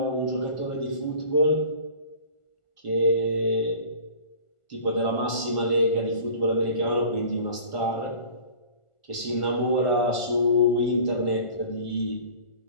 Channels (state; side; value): late; right; 1.4 ms